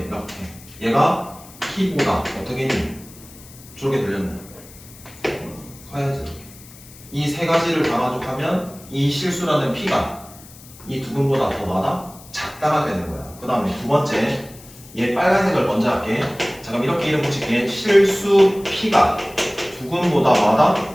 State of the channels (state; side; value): noise; left; hiss, 20 dB below the sound